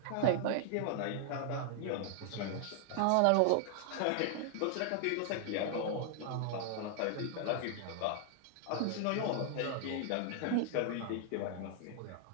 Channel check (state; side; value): different; both; correlation 0.00